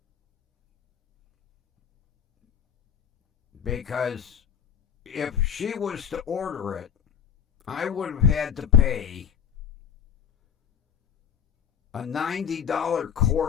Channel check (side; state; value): right; quieter; 8.2 dB